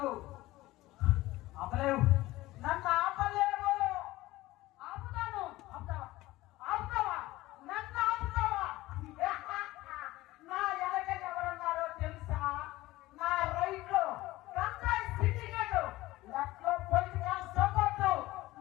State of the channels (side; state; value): right; quieter; 17.9 dB